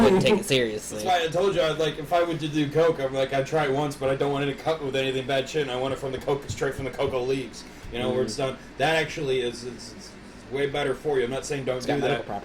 take it seriously. That's why I told you, if I were to do coke, I'm like, I'd try it once, but I don't want it to cut with anything bad shit, and I want it from the coke, straight from the cocoa leaves. Where it's done. That actually is it's way better for you. I'm not saying don't do that. It's got medical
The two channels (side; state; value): both; identical; correlation 1.00